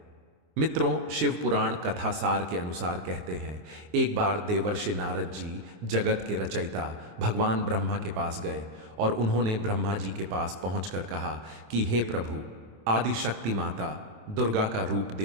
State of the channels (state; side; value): late; left; 26 ms